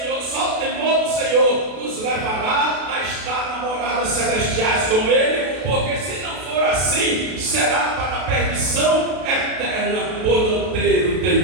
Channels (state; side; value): late; left; 32 ms